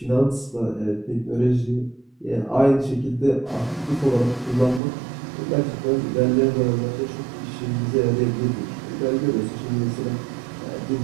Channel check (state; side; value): drops out; left; at 4.8 s